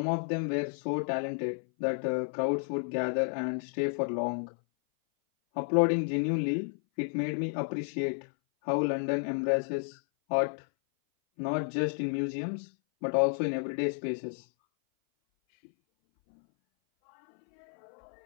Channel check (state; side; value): silent; right; 57 dB below the other